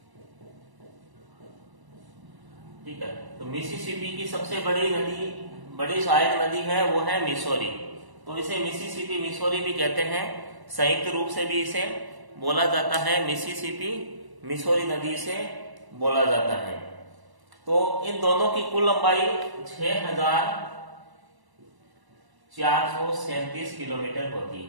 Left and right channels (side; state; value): left; late; 1.0 ms